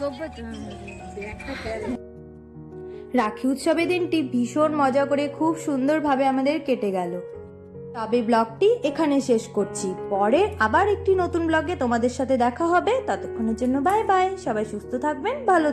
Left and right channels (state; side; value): identical; both; correlation 1.00